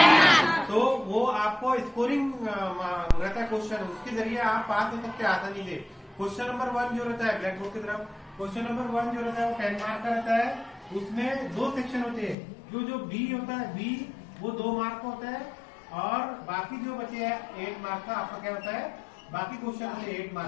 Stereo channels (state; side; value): drops out; right; at 12.4 s